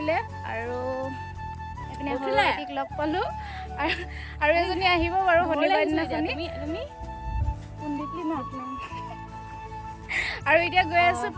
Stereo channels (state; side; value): identical; both; correlation 1.00